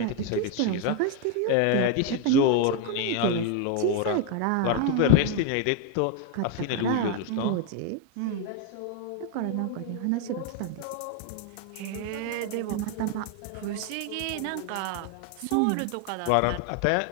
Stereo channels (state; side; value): different; both; correlation 0.01